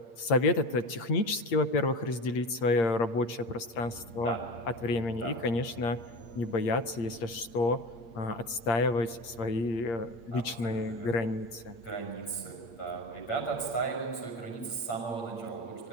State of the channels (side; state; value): right; late; 8.6 ms